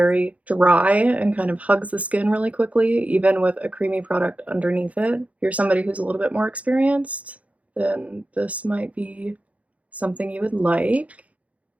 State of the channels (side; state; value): left; late; 0.067 ms